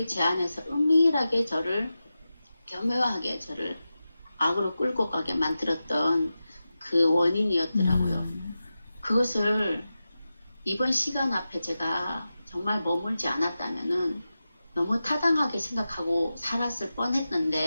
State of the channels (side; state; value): both; inverted; correlation -0.93